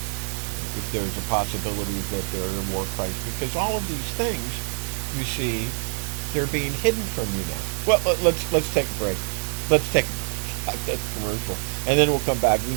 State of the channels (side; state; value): left; silent; 62 dB below the other